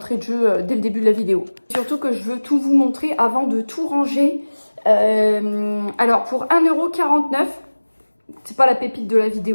de jeu dès le début de la vidéo. Surtout que je veux tout vous montrer avant de tout ranger. Alors pour 1,49 €, c'est pas la pépite de la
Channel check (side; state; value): both; inverted; correlation -1.00